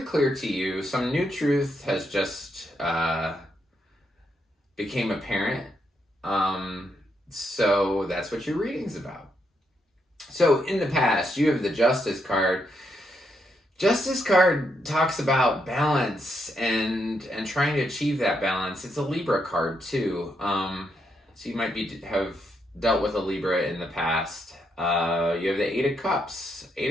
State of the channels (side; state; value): both; normal; correlation 0.79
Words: clear to you. Some new truth has just became apparent. So that's what your reading's about. So in the past, you have the Justice card. Justice card talks about balance and trying to achieve that balance. It's a Libra card too. So you might have dealt with a Libra in the past. You have the 8 of Cups.